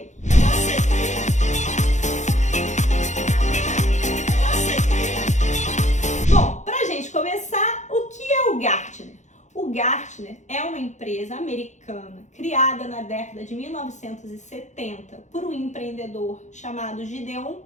Bom, pra gente começar, o que é o Gartner? O Gartner é uma empresa americana criada na década de 1970 por um empreendedor chamado Gideon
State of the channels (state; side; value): late; right; 0.34 ms